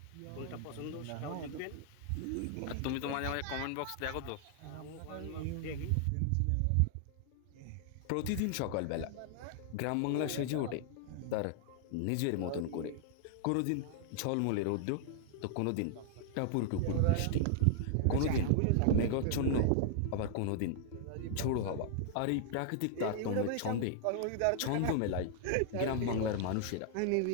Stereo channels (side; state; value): both; different; correlation 0.00